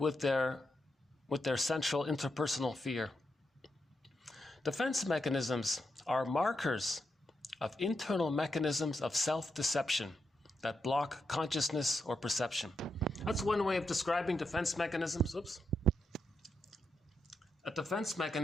their central interpersonal fear. Defense mechanisms are markers of internal mechanisms of self-deception that block consciousness or perception. That's one way of describing defense mechanisms. Oops. A defense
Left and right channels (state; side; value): normal; both; correlation 0.84